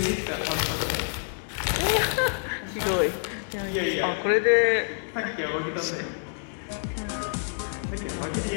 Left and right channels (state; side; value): silent; right; digital silence